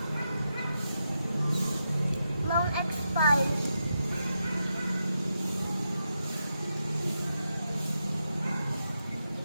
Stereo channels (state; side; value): inverted; both; correlation -0.85